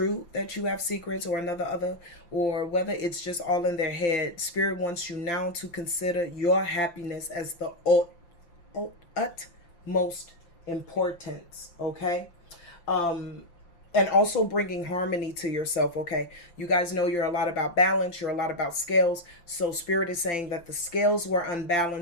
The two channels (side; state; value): right; late; 5.8 ms